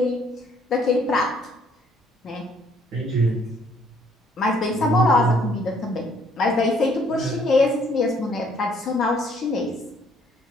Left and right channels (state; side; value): normal; both; correlation 0.64